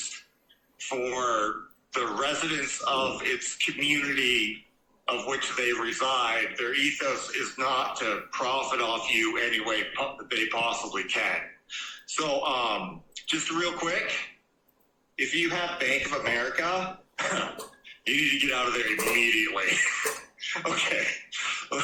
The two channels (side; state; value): both; identical; correlation 1.00